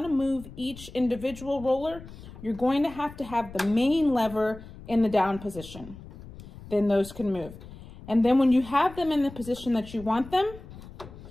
to move each individual roller, you're going to have the main lever in the down position. Then those can move. And then when you have them in the position that you want them,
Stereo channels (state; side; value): noise; left; rumble, 16 dB below the sound